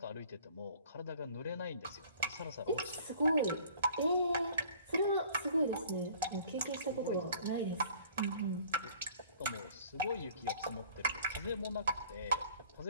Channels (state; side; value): inverted; both; correlation -0.52